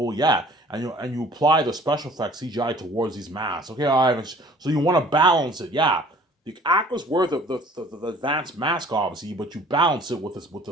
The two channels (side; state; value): both; normal; correlation 0.52